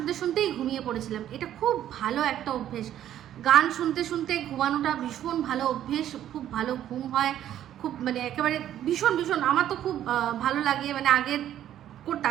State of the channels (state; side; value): quieter; left; 11.4 dB